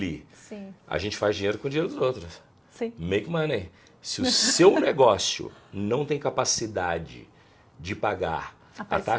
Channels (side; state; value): both; identical; correlation 1.00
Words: Sim, A gente faz dinheiro com o dinheiro dos outros. sim. Make money. Se o seu negócio não tem capacidade de pagar a